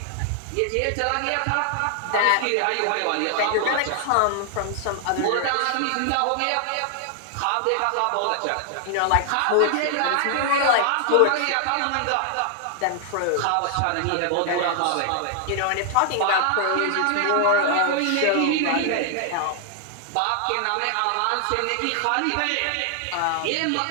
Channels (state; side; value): different; both; correlation 0.00